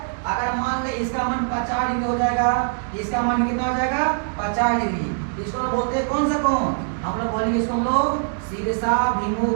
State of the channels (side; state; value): left; silent; digital silence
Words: अगर मान ले इसका मान 50 डिग्री हो जाएगा, इसका मान कितना हो जाएगा, 50 डिग्री, इसको बोलते हैं कौन सा कोण? हम लोग बोलेंगे इसको हम लोग